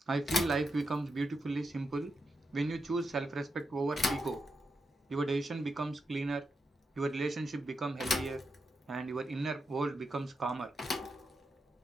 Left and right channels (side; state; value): both; normal; correlation 0.85